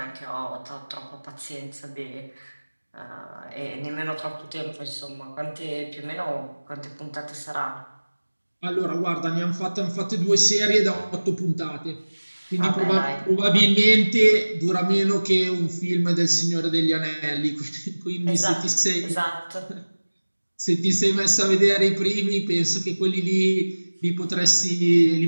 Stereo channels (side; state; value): both; inverted; correlation -1.00